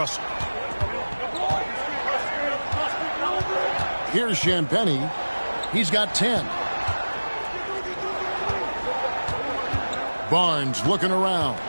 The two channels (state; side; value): inverted; both; correlation -1.00